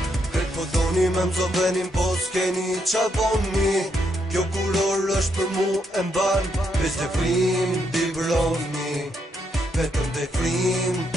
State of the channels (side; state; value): both; normal; correlation 0.78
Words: Këtë po doni me mzon venin po s'keni qa boni Kjo kuror është për mu e mban Veç dhe frim t'i broni Vetëm dhe frim